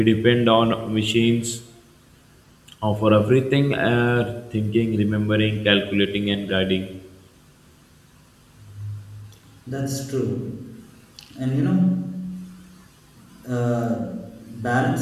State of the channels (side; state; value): both; identical; correlation 1.00